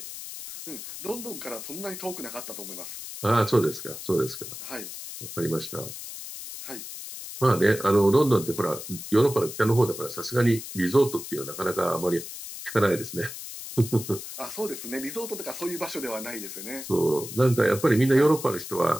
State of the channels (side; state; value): left; noise; hiss, 10 dB below the sound